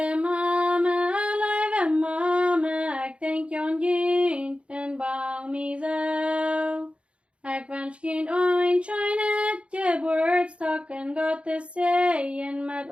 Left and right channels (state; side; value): late; left; 0.060 ms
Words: Mamé, Leewe Mamé, ek denk jon jint en bang mi zo. Ek wens kind ooit schijnet je woordstok en God te zeeën met